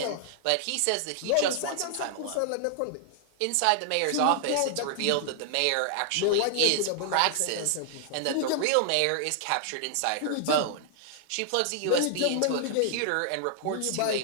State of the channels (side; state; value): both; different; correlation -0.01